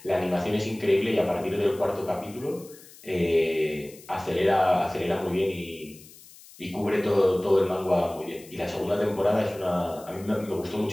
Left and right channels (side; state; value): left; noise; hiss, 21 dB below the sound